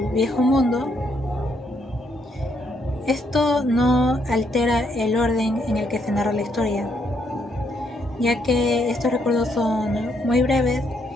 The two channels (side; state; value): both; normal; correlation 0.74